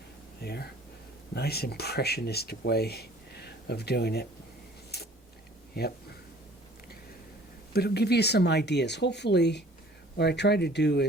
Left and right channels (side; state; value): both; normal; correlation 0.52